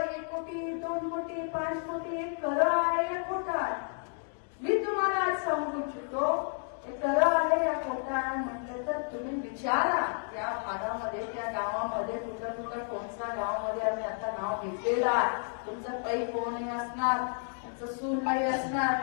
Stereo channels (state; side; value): silent; right; 57 dB below the other